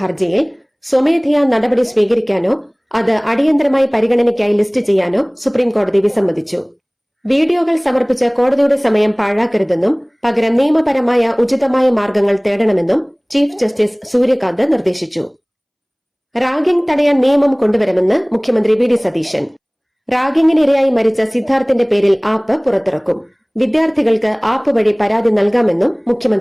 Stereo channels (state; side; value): identical; both; correlation 1.00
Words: സ്വമേധയാ നടപടി സ്വീകരിക്കാനോ അത് അടിയന്തരമായി പരിഗണനയ്ക്കായി ലിസ്റ്റ് ചെയ്യാനോ സുപ്രീംകോടതി വിസമ്മതിച്ചു. വീഡിയോകൾ സമർപ്പിച്ച് കോടതിയുടെ സമയം പാഴാക്കരുതെന്നും പകരം നിയമപരമായ ഉചിതമായ മാർഗങ്ങൾ തേടണമെന്നും ചീഫ് ജസ്റ്റിസ് സൂര്യകാന്ത് നിർദ്ദേശിച്ചു. റാഗിംഗ് തടയാൻ നിയമം കൊണ്ടുവരുമെന്ന് മുഖ്യമന്ത്രി VD സതീശൻ. റാഗിംഗിനിരയായി മരിച്ച സിദ്ധാർത്ഥിന്റെ പേരിൽ ആപ്പ് പുറത്തിറക്കും. വിദ്യാർത്ഥികൾക്ക് ആപ്പ് വഴി പരാതി നൽകാമെന്നും